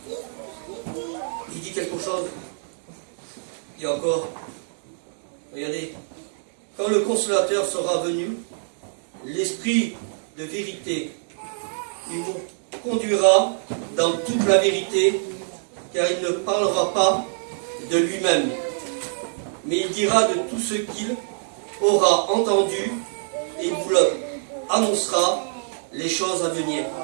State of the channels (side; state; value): left; silent; digital silence